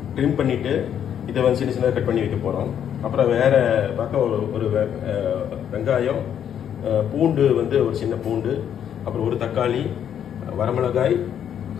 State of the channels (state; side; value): quieter; right; 9.2 dB